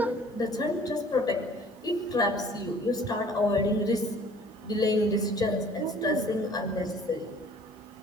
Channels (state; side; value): normal; both; correlation 0.52